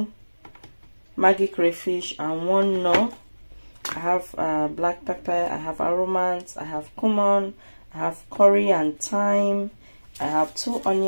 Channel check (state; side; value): inverted; both; correlation -1.00